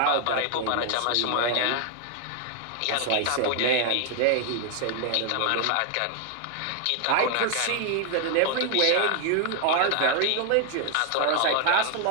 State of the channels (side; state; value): both; different; correlation 0.00